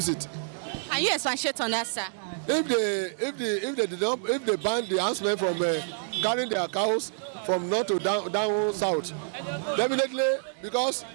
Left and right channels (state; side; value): silent; left; digital silence